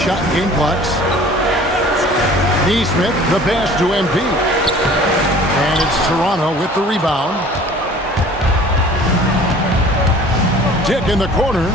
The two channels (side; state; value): both; normal; correlation 0.48